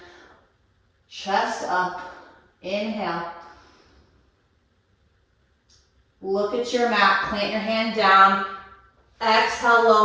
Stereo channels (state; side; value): identical; both; correlation 1.00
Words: chest up. Inhale. Look at your mat, plant your hand down. Exhale,